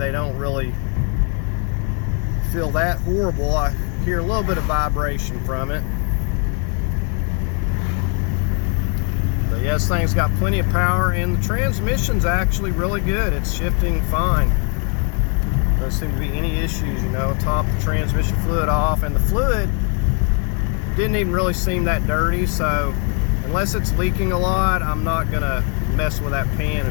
don't really feel that horrible. I hear a little bit of vibration from it. Yeah, this thing's got plenty of power, and the transmission's actually really good. It's shifting fine. Doesn't seem to be any issues, you know. Top the transmission fluid off, and the fluid didn't even really seem that dirty, so unless it's leaking a lot, I'm not gonna mess with that pan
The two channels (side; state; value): right; quieter; 39.2 dB